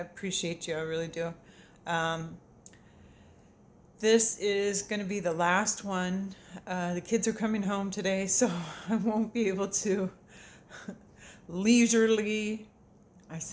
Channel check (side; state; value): both; identical; correlation 1.00